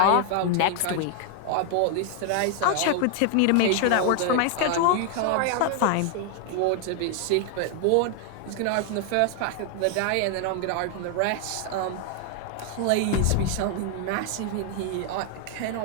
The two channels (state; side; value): different; both; correlation 0.00